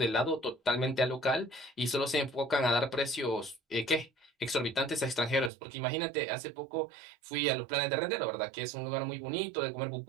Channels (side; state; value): left; drops out; at 5.5 s